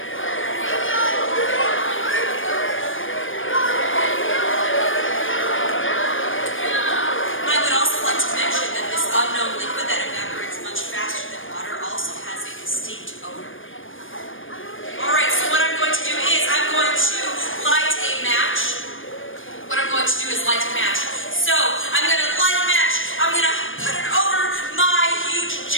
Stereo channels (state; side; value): late; right; 0.58 ms